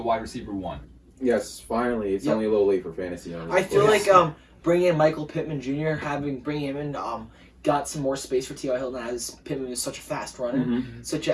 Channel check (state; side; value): identical; both; correlation 1.00